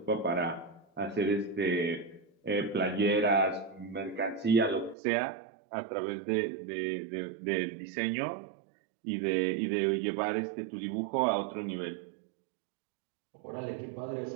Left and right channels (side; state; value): left; drops out; at 5.0 s